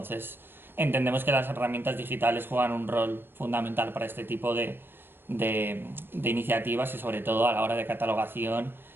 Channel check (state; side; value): late; left; 0.10 ms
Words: entendemos que las herramientas digitales juegan un rol fundamental para este tipo de iniciativas y sobre todo a la hora de catalogación